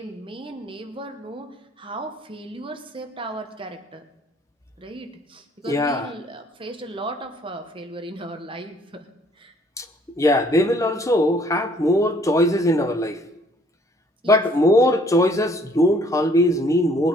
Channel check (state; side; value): normal; both; correlation 0.61